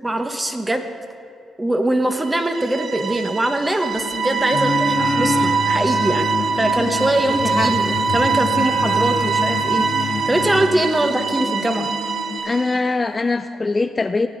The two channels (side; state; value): both; normal; correlation 0.87